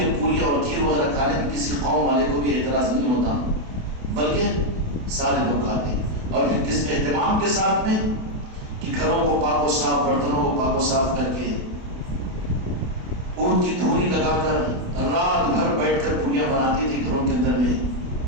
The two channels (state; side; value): late; left; 28 ms